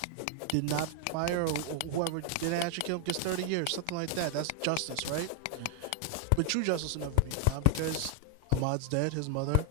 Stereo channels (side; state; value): both; different; correlation 0.00